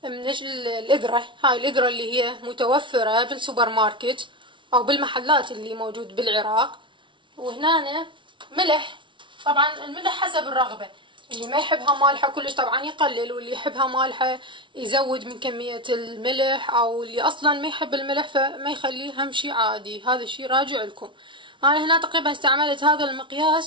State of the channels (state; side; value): late; left; 0.24 ms